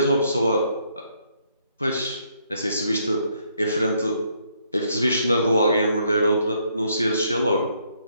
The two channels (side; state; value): both; inverted; correlation -0.71